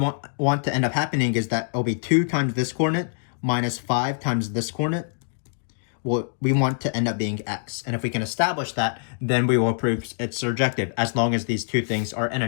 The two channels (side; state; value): right; silent; digital silence